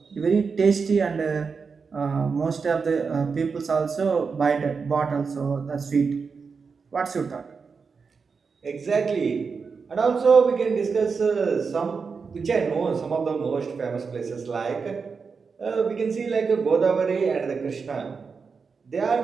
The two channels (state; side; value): quieter; left; 5.2 dB